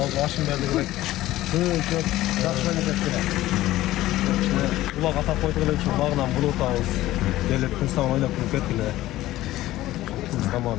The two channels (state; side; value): quieter; right; 15.8 dB